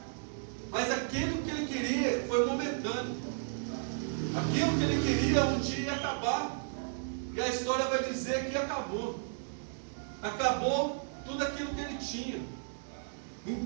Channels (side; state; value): left; silent; digital silence